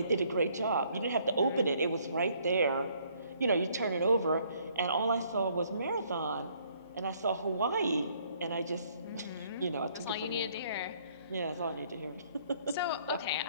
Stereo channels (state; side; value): inverted; both; correlation -0.64